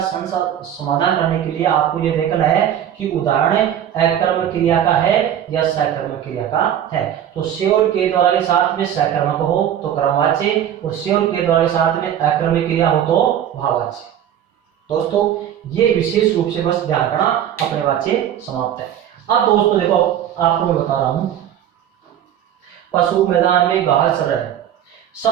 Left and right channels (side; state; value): left; quieter; 10.2 dB